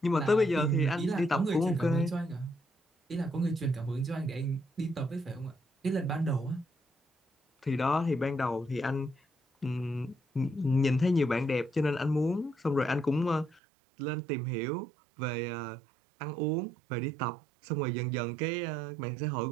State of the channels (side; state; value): left; drops out; at 13.6 s